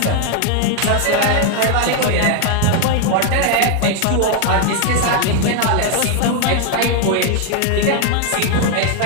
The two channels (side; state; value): both; different; correlation 0.01